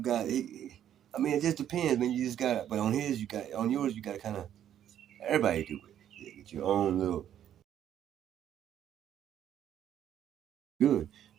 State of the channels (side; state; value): left; quieter; 10.5 dB